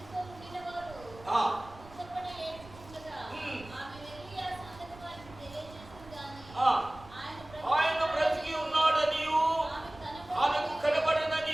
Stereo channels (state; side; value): noise; right; rumble, 19 dB below the sound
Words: ఆయన బ్రతికి ఉన్నాడనియు ఆమెకు